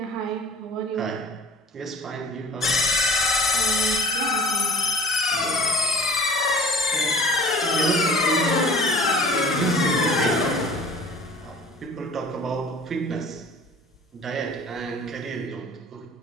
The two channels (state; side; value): normal; both; correlation 0.46